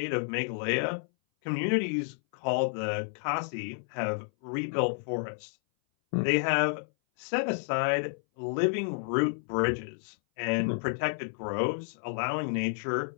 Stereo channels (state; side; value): silent; right; 57 dB below the other